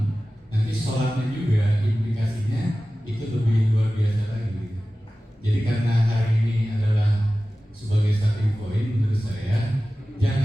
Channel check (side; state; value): both; normal; correlation 0.96